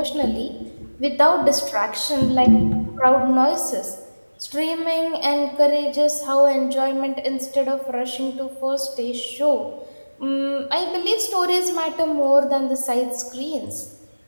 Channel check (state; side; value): inverted; both; correlation -1.00